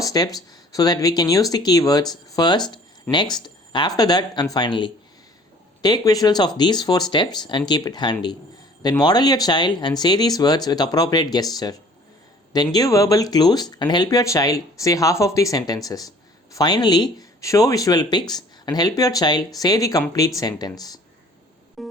so that we can use the keywords first, next, after that, and finally. Take visuals of these 4 steps and keep it handy. Then model your child and say these words with appropriate gesture. Then give verbal clues and help your child say half of the sentences. Finally, show visual pics and help your child say the complete sentence.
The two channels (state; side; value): normal; both; correlation 0.52